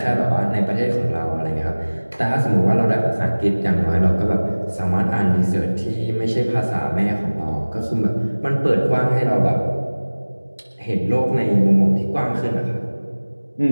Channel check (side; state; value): both; inverted; correlation -1.00